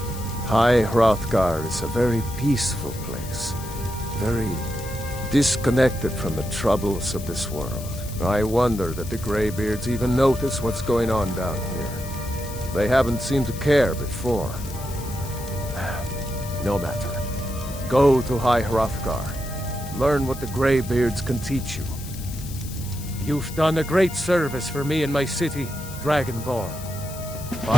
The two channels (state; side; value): noise; left; hiss, 14 dB below the sound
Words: High Hrothgar is a very peaceful place. Very disconnected from the troubles of this world. I wonder that the Greybeards even notice what's going on down here. They haven't seemed to care before. No matter. Go to High Hrothgar. Learn what the Greybeards can teach you. You've done a great service for me and my city, Dragonborn.